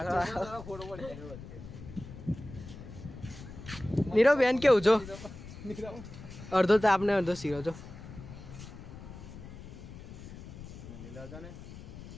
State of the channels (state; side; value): noise; left; rumble, 13 dB below the sound